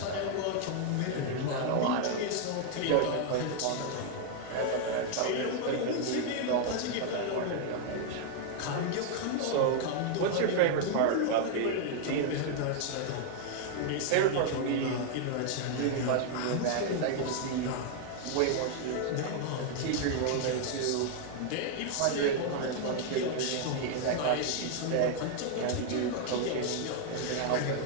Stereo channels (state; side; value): different; both; correlation 0.00